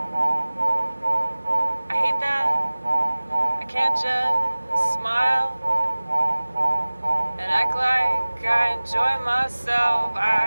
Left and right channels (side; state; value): both; inverted; correlation -1.00